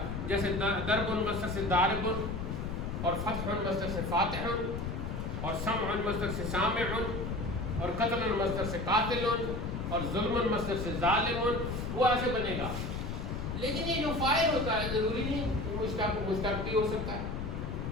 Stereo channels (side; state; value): left; noise; rumble, 4 dB below the sound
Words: جیسے ضرب مصدر سے ضارب, اور فتح مصدر سے فاتح, اور سمع مصدر سے سامع, اور قتل مصدر سے قاتل, اور ظلم مصدر سے ظالم, وہ ایسے بنے گا. لیکن یہ جو فاعل ہوتا ہے ضروری نہیں مشتق بھی ہو سکتا ہے.